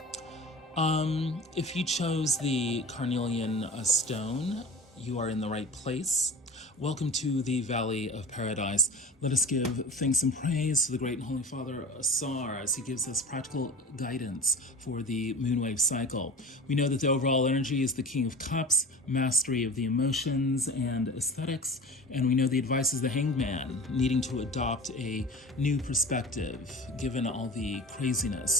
If you chose the Carnelian stone, you are in the right place. Welcome to the Valley of Paradise. Let us give thanks and praise to the great and holy Father Asar as he gives us practical guidance for the moonwave cycle. We know that the overall energy is the King of Cups, mastery of the emotions and aesthetics, and we know the advice is the Hanged Man, needing to adopt a new perspective given all the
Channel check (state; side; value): normal; both; correlation 0.37